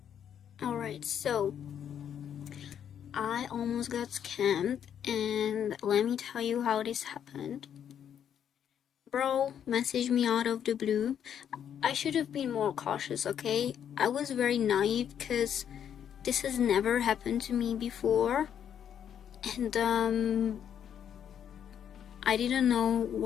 Alright, so I almost got scammed, and let me tell you how this happened. Bro messaged me out of the blue. I should have been more cautious, okay? I was very naive because this has never happened to me before, and I didn't know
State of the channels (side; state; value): right; quieter; 9.0 dB